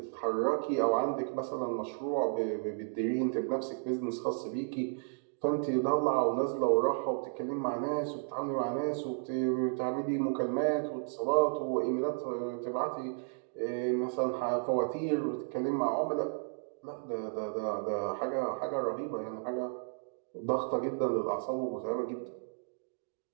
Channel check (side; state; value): left; silent; digital silence